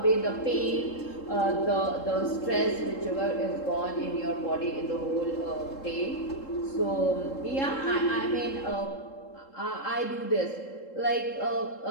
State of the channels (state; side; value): late; right; 3.7 ms